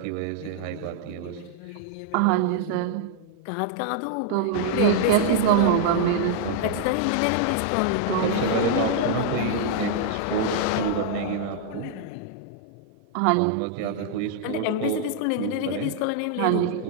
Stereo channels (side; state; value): both; different; correlation -0.01